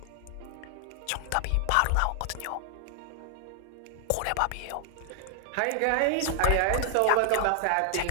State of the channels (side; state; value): both; different; correlation 0.00